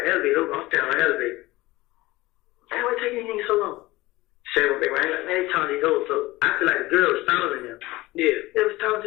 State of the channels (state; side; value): quieter; right; 19.5 dB